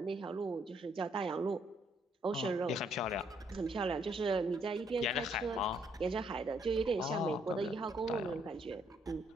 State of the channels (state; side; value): normal; both; correlation 0.70